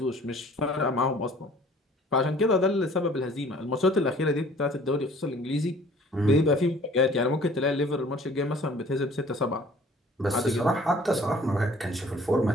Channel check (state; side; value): normal; both; correlation 0.52